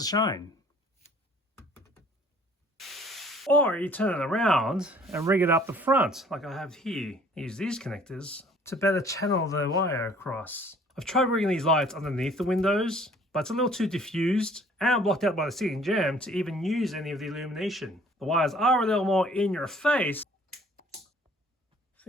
shine. Or you turn it around and rig it up the front, like I have here. Use these connectors to better channel the wire across. I've tried rigging these lights underneath the windows, but it's a little too diffused and blocked out by the ceiling gem to even use any of the illumination. The wires are a little more in your face. I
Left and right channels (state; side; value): normal; both; correlation 0.55